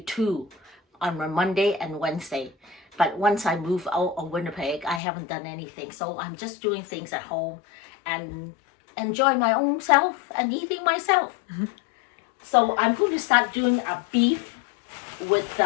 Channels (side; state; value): right; drops out; at 5.0 s